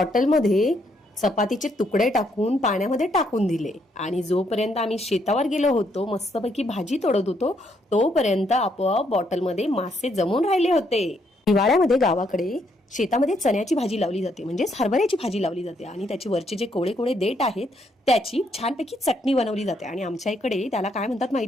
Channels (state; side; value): normal; both; correlation 0.73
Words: चपातीचे तुकडे टाकून पाण्यामध्ये टाकून दिले आणि जोपर्यंत आम्ही शेतावर गेलो होतो, मस्तपैकी भाजी तोडत होतो, तोपर्यंत आपोआप बॉटलमध्ये मासे जमून राहिले होते. हिवाळ्यामध्ये गावाकडे शेतामध्ये चण्याची भाजी लावली जाते, म्हणजेच हरभऱ्याची भाजी लावली जाते आणि त्याची वरचे जे कोळे कोळे देठ आहेत त्याची छानपैकी चटणी बनवली जाते. आणि आमच्या इकडे त्याला काय म्हणतात